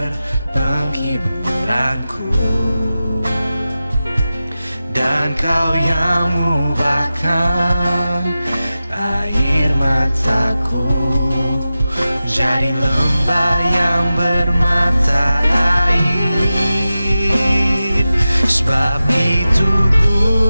Engkau yang ubahkan air mataku jadi lembah yang bermata air. Sebab itu ku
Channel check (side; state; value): both; inverted; correlation -0.94